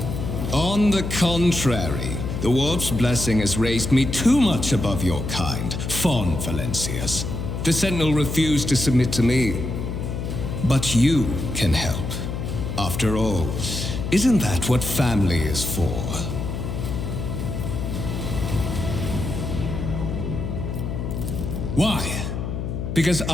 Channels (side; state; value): left; noise; hum, 4 dB below the sound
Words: On the contrary, the Warp's blessing has raised me too much above your kind, Fon Valencius. The Sentinel refused to submit to me. But you can help. After all, isn't that what family is for? Why? Because